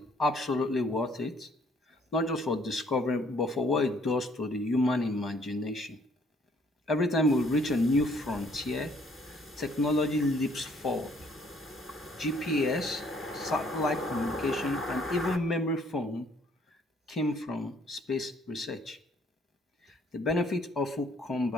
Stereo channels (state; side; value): normal; both; correlation 0.63